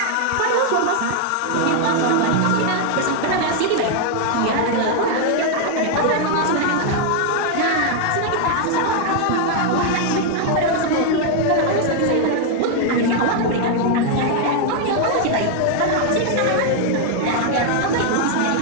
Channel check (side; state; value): both; different; correlation 0.00